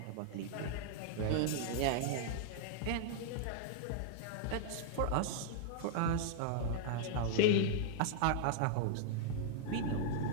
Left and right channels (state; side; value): different; both; correlation -0.01